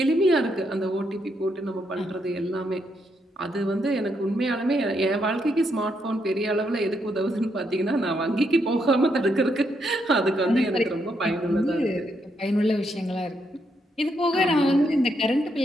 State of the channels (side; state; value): both; normal; correlation 0.78